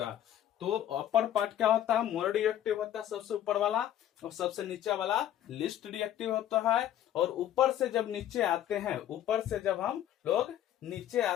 तो अपर पार्ट क्या होता है? मोर रिएक्टिव होता है सबसे ऊपर वाला, और सबसे नीचे वाला लीस्ट रिएक्टिव होता है। और ऊपर से जब नीचे आते हैं, ऊपर से जब हम लोग नीचे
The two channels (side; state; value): right; quieter; 11.5 dB